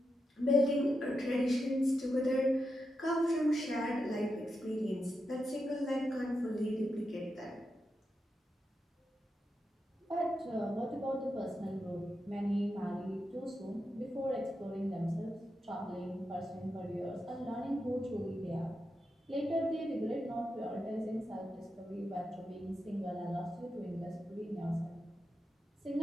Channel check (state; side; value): normal; both; correlation 0.87